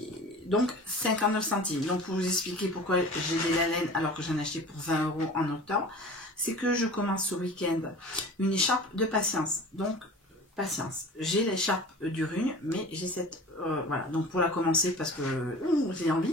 Donc 59 centimes. Donc pour vous expliquer pourquoi j'ai des laines alors que j'en ai acheté pour 20 € en octobre, c'est que je commence ce week-end une écharpe de patience. Donc patience. J'ai l'écharpe du Rugne, mais j'ai cette... voilà, donc pour la commencer parce que j'ai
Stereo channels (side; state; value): both; normal; correlation 0.39